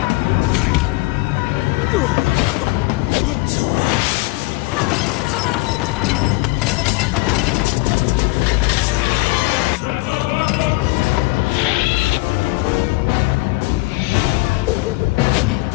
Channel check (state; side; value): quieter; right; 22.6 dB